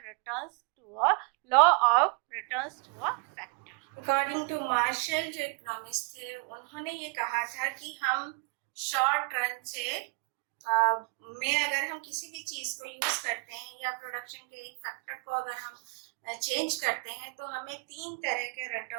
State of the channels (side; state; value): left; quieter; 30.1 dB